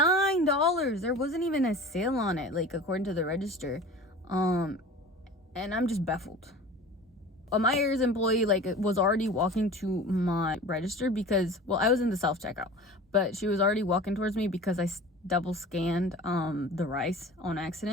There wasn't even a sale on it, like according to the register. And I'm just baffled. A Myers employee like was already walking to my register because, well, I was in the self-checkout, but she was already walking towards me because I double scanned the rice on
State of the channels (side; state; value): both; normal; correlation 0.38